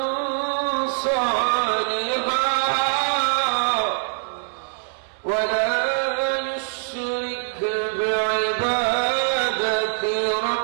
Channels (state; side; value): silent; left; digital silence